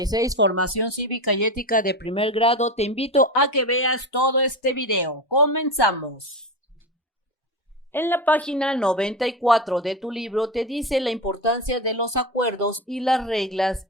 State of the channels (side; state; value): both; normal; correlation 0.21